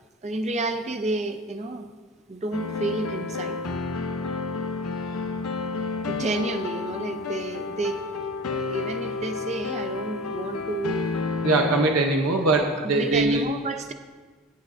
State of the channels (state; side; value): normal; both; correlation 0.34